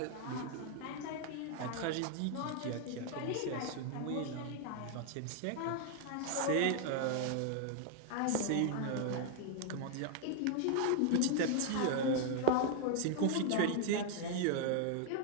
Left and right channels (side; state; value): both; different; correlation 0.00